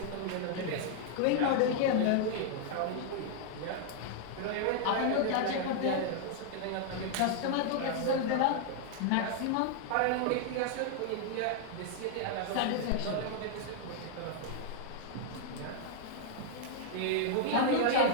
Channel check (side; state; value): both; different; correlation 0.00